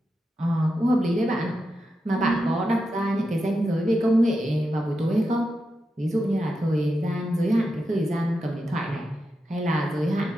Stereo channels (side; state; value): both; normal; correlation 0.88